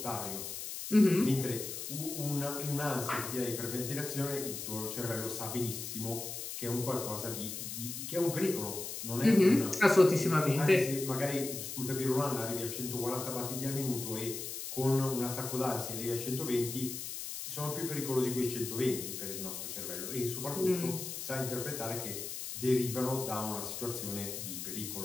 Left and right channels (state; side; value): noise; left; hiss, 6 dB below the sound